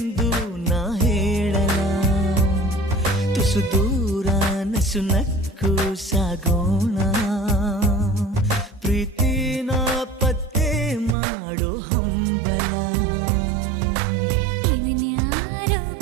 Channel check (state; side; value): drops out; left; at 11.2 s